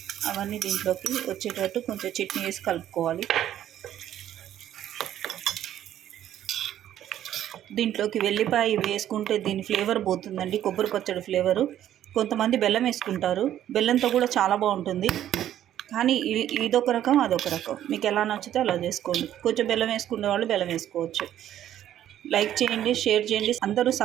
అవన్నీ దీంట్లోకి వచ్చేటట్టు కొంచెం చట్నీ వేసి కలుపుకోవాలి. దీంట్లోకి వెల్లిపాయ వేసుకుంటే దీని ఫ్లేవర్ పోతుందండి, కొబ్బరి పచ్చడి ఫ్లేవరు. కొంతమంది బెల్లం వేసుకుంటారు, బెల్లంతో కూడా చాలా బాగుంటుంది. కానీ ఇదొక రకం, అదొక రకం. మీకు ఎలా నచ్చితే అలా చేసుకోండి. కొంచెం బెల్లం వేసుకునే వాళ్ళు బెల్లం వేసుకోవచ్చు. లైక్ చేయండి, షేర్ చేయండి, అందరూ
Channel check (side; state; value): left; quieter; 11.6 dB